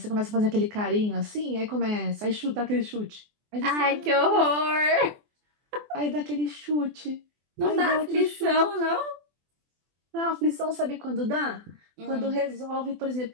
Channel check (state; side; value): late; left; 24 ms